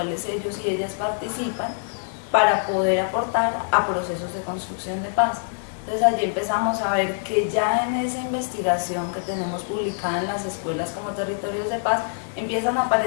ellos y ellas participan para poder aportar a procesos de construcción de paz. Entonces allí empezamos a ver que ya en esa investigación que tenemos publicada en las escuelas como territorios de paz, empiezan a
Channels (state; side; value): silent; right; digital silence